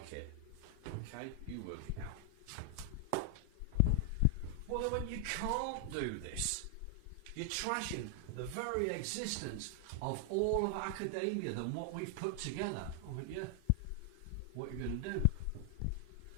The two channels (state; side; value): different; both; correlation 0.00